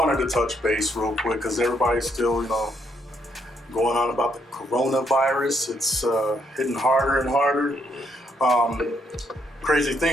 to touch base real quick because everybody's still, going on about the coronavirus. It's hitting harder and harder. Crazy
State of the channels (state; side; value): normal; both; correlation 0.73